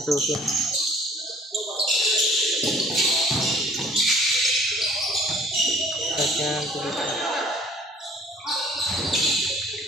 Susun. Tapos yan.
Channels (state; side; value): normal; both; correlation 0.54